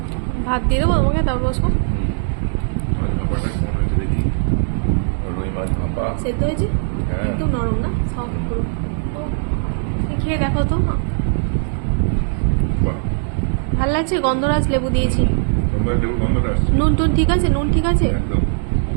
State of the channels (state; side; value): silent; left; digital silence